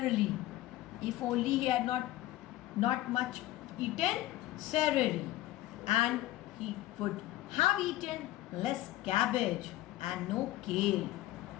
If only he had not much eaten celery, and he would have eaten less cabbage and no kale,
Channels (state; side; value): quieter; right; 15.9 dB